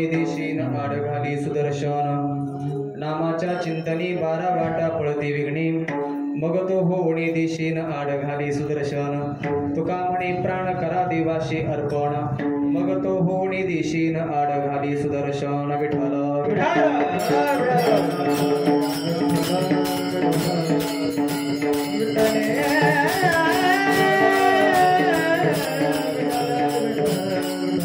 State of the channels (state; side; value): identical; both; correlation 1.00